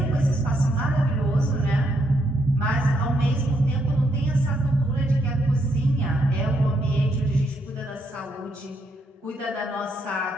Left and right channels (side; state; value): both; normal; correlation 0.76